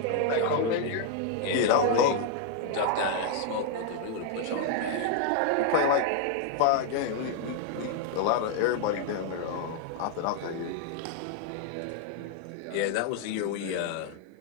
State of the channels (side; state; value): both; different; correlation 0.00